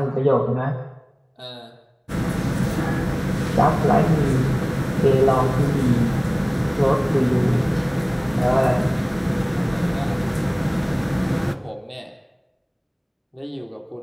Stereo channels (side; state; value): both; identical; correlation 1.00